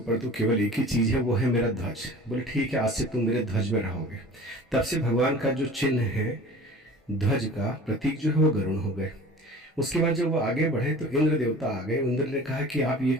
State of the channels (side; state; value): both; normal; correlation 0.42